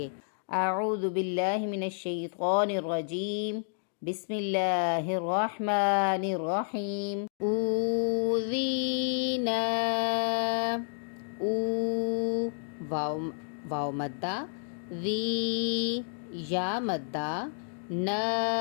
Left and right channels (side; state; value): right; silent; digital silence